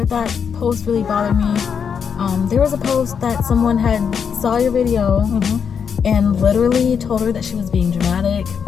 that post really bothered me. There was a post that someone had saw your video and literally told her that she was being dramatic.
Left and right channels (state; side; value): quieter; right; 6.9 dB